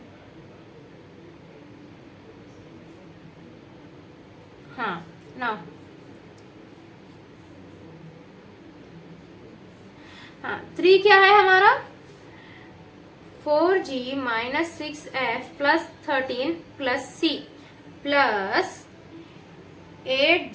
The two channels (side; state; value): both; identical; correlation 1.00